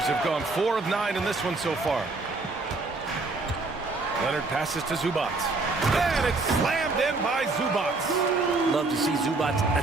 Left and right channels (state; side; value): quieter; left; 3.5 dB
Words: have gone 4 of 9 in this one so far. Leonard passes to Zubac. And it's slammed in by Zubac. Love to see Zubac